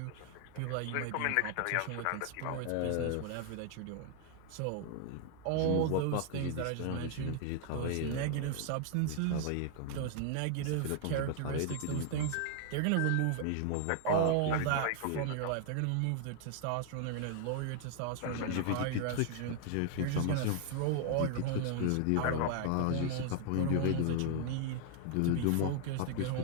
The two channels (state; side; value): different; both; correlation 0.00